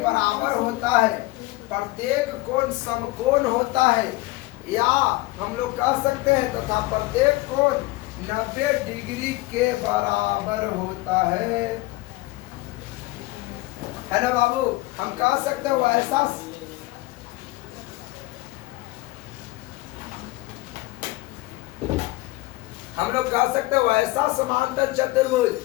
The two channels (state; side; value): quieter; right; 20.3 dB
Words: होता है। प्रत्येक कोण समकोण होता है, या हम लोग कह सकते हैं तथा प्रत्येक कोण 90 डिग्री के बराबर होता है ना बाबू। हम कह सकते हो ऐसा, हम लोग कह सकते हैं वैसा समांतर चतुर्भुज